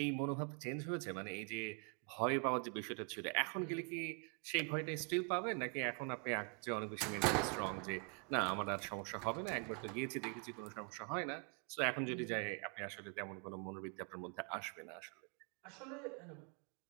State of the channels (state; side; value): quieter; left; 37.7 dB